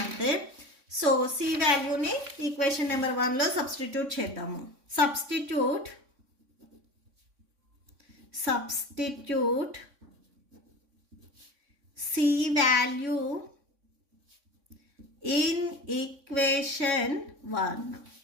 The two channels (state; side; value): late; left; 3.6 ms